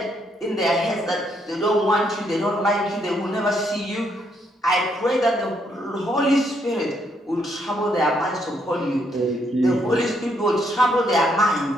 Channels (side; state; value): both; normal; correlation 0.73